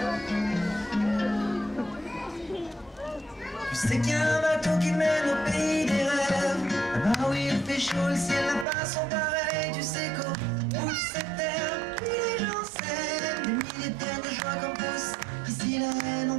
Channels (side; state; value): left; drops out; at 8.7 s